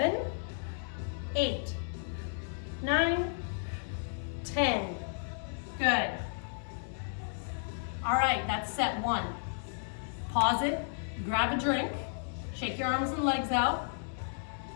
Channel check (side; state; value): right; silent; digital silence